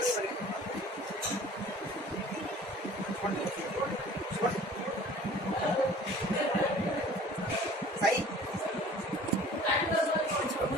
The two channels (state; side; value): normal; both; correlation 0.48